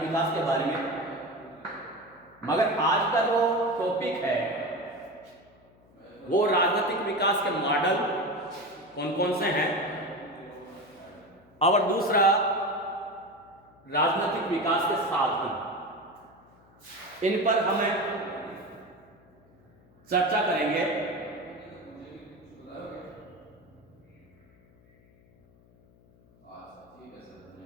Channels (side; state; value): left; noise; hum, 29 dB below the sound